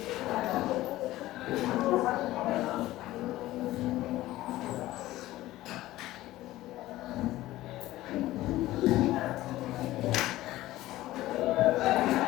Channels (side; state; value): right; quieter; 16.2 dB